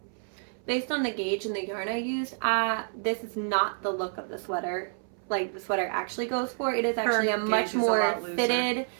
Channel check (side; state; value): left; silent; 59 dB below the other